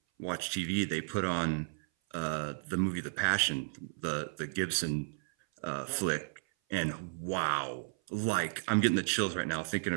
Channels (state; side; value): silent; left; 55 dB below the other